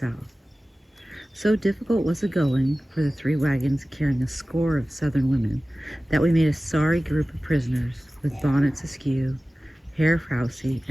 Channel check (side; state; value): both; normal; correlation 0.97